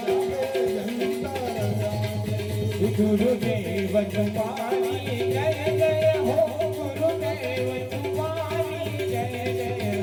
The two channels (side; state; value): both; identical; correlation 1.00